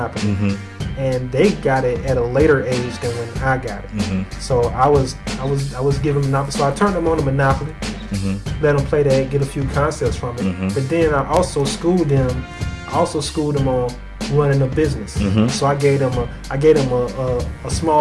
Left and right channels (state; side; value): identical; both; correlation 1.00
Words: and they got it at a later age than when I got it. So I was giving Monopoly. So I turned them on to Monopoly, let them play that, get a few concepts from it. But then I also schooled them on running a business. So I gave them a